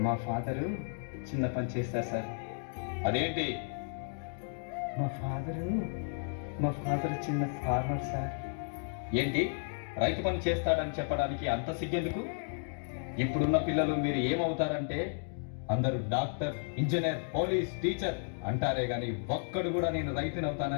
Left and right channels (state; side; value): silent; right; digital silence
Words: మా ఫాదరు చిన్న పని చేస్తారు సార్. అదేంటి? మా ఫాదర్ చిన్న ఫార్మర్ సార్. ఏంటి రైతు పని చేస్తాడని చెప్పడానికి అంత సిగ్గెందుకు? ఇప్పుడున్న పిల్లలు మీరు ఏమవుతారంటే అందరూ డాక్టర్, ఇంజనీర్, పోలీస్, టీచర్ అంటారే గాని ఒక్కడు కూడా నేను రైతుని